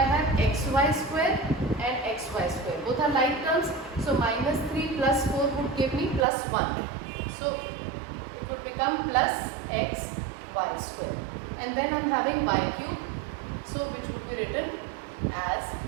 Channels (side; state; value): left; drops out; at 6.2 s